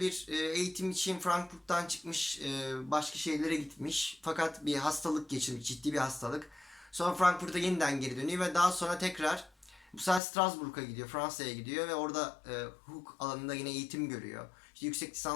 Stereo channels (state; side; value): drops out; right; at 10.2 s